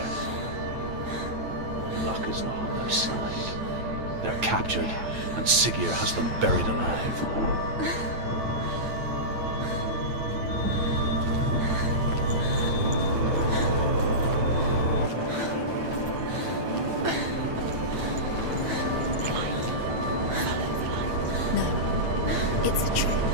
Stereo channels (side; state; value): left; late; 9.1 ms